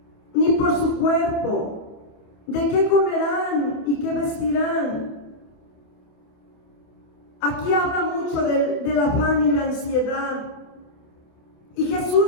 ni por su cuerpo, de qué comerán y qué vestirán. Aquí habla mucho del afán y la ansiedad. Y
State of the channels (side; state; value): right; late; 28 ms